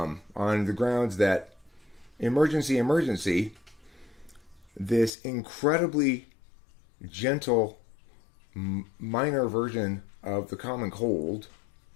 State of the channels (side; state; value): right; drops out; at 5.1 s